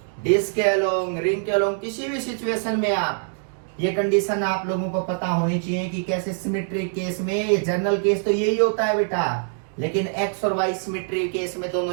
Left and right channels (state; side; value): silent; left; 63 dB below the other